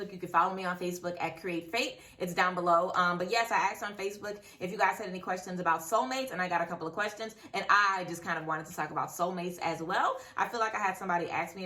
You can follow me on Facebook at Create Fate. It's down below. But yes, I asked on Facebook if you guys had any questions about soulmates, and I got a couple of questions, and I just kind of wanted to talk about soulmates as well. I feel like I had somebody ask me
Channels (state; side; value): identical; both; correlation 1.00